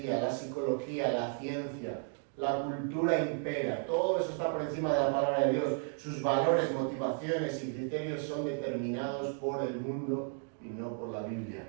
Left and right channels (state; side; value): silent; left; 55 dB below the other